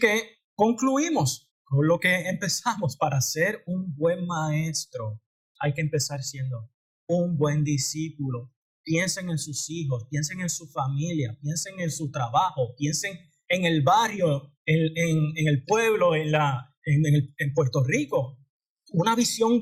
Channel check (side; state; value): both; identical; correlation 1.00